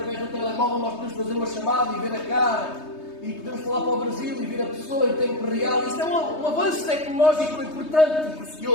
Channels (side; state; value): right; late; 3.2 ms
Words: do telemóvel nós podemos fazer uma chamada e ver a cara. E podemos falar para o Brasil e ver a pessoa em tempo real. Isso é um avanço tecnológico importante e